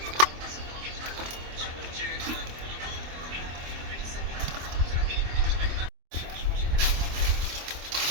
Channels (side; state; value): left; late; 24 ms